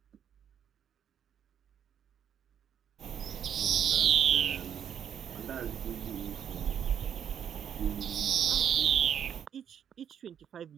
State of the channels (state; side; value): quieter; left; 8.7 dB